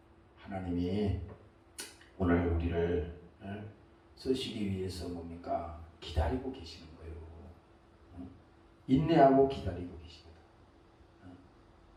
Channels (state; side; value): identical; both; correlation 1.00